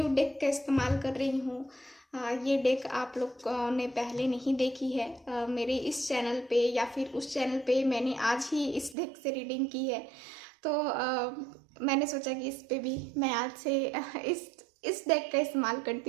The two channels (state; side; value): drops out; left; at 9.0 s